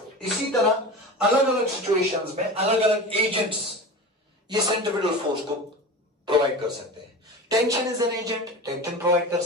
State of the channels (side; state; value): both; normal; correlation 0.31